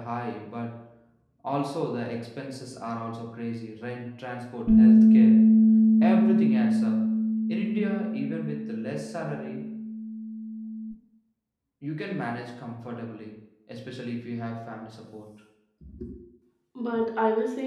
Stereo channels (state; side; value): identical; both; correlation 1.00